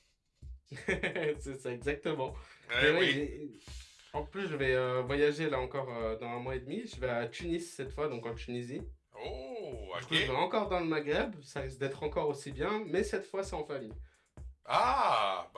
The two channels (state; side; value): identical; both; correlation 1.00